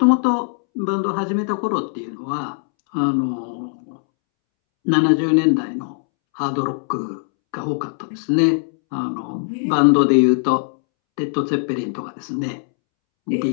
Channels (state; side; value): silent; right; 66 dB below the other